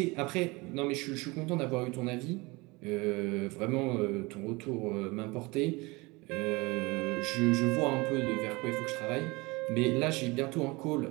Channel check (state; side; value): quieter; left; 24.5 dB